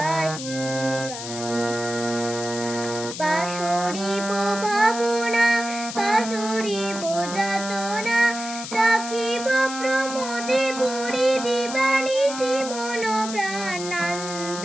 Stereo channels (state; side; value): noise; left; hiss, 9 dB below the sound